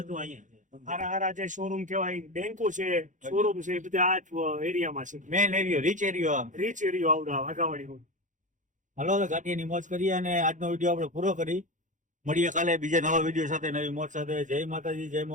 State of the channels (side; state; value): left; late; 0.37 ms